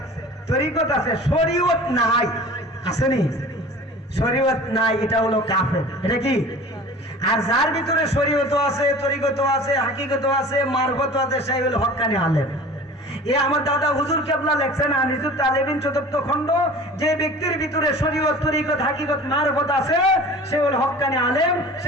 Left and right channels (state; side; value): normal; both; correlation 0.41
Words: তরিকত আছে, শরীয়ত নাই, আসেনি? শরীয়ত নাই, এটা হলো কাফের। এটা কি? আর যার ভিতরে শরীয়ত আছে, তরিকত আছে, হাকিকত আছে, মারফত আছে, সেই হলো হক্কানি আলেম। এ আমার দাদা হুজুর কেবলা লেখছেন আনিসুত তালেবিন 4th খণ্ড, যে ব্যক্তির ভিতরে শরীয়ত, তরিকত, হাকিকত, মারফত আছে, সে হলো হক্কানি আলেম,